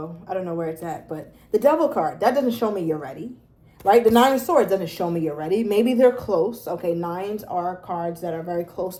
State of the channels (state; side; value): identical; both; correlation 1.00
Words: I don't know where it's at, but the Devil card, that doesn't show me you're ready. Right? The 9 of Swords doesn't show me you're ready. Maybe they're close. Okay, 9s are cards that are very close